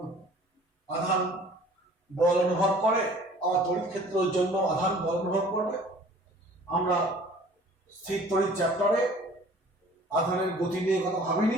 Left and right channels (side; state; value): both; normal; correlation 0.50